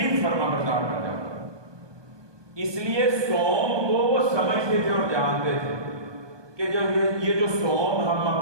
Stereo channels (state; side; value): late; left; 1.2 ms